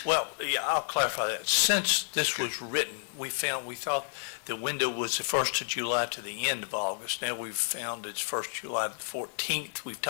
Well, yeah, I'll clarify that. Since this was written, we thought the window was the 1st of July to the end of August. Now we've found it's 1st July to the 14th. We've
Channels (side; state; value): right; silent; 57 dB below the other